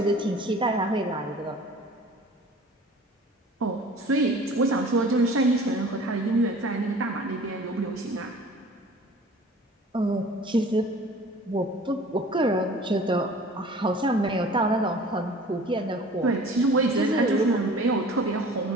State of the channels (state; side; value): normal; both; correlation 0.46